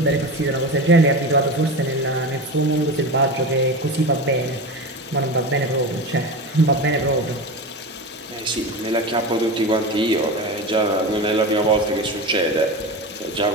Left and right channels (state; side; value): normal; both; correlation 0.25